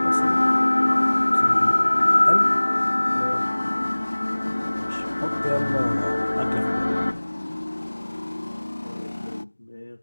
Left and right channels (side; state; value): both; inverted; correlation -1.00